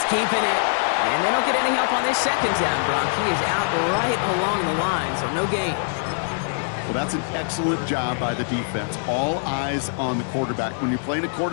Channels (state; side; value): silent; right; 63 dB below the other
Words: keeping it. And they don't get any help on this second down, Brock. He is out right along the line, so no gain. Well, that's an excellent job by the defense. All eyes on the quarterback. When you're playing a